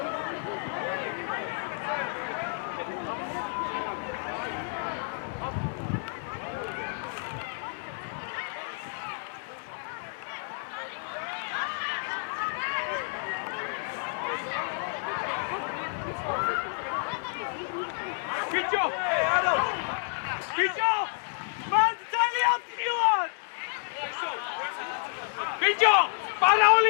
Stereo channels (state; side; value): silent; right; digital silence